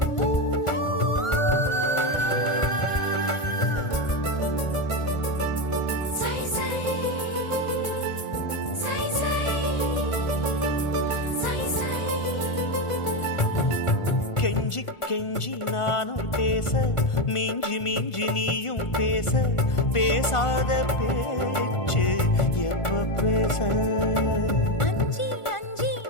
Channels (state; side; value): late; right; 1.5 ms